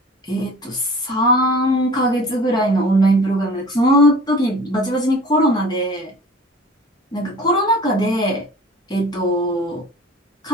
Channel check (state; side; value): normal; both; correlation 0.43